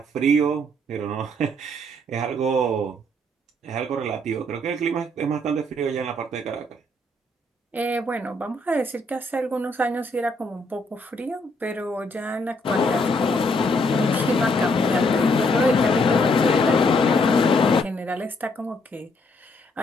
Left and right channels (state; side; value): normal; both; correlation 0.71